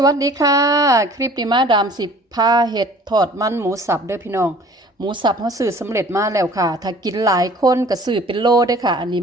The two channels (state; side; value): normal; both; correlation 0.50